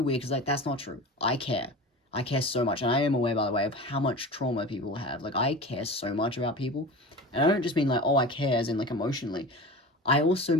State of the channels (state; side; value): normal; both; correlation 0.32